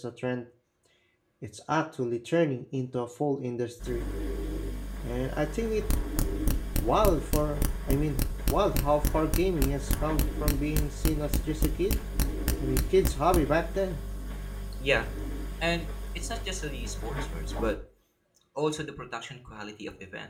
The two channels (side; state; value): both; identical; correlation 1.00